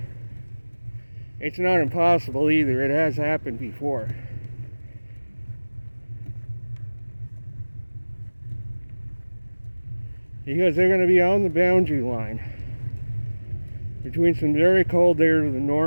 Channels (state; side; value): inverted; both; correlation -1.00